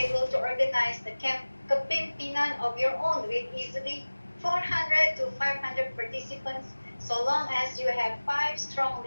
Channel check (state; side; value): inverted; both; correlation -1.00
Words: able to organize the kapimpinan of your own with easily 400 to 500 participants, so long as you have 5 strong